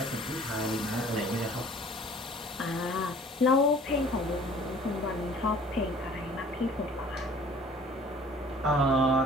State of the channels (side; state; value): both; normal; correlation 0.51